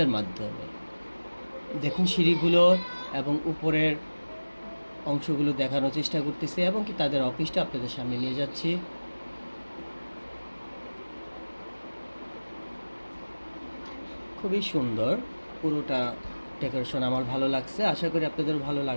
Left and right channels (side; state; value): both; inverted; correlation -1.00